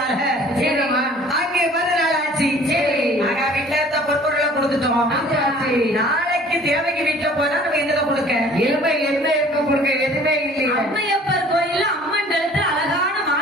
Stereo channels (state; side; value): normal; both; correlation 0.51